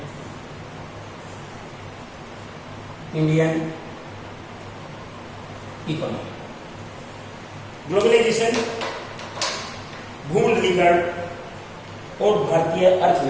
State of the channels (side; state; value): both; identical; correlation 1.00